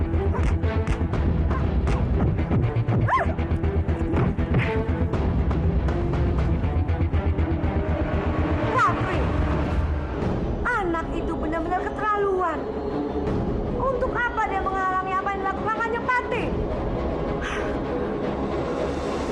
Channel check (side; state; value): both; identical; correlation 1.00